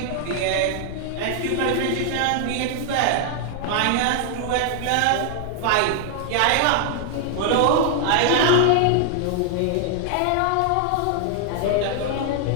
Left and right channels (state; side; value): different; both; correlation 0.00